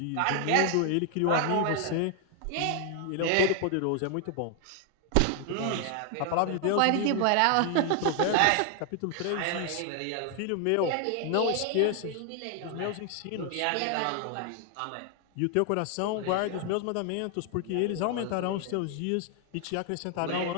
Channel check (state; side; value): different; both; correlation 0.00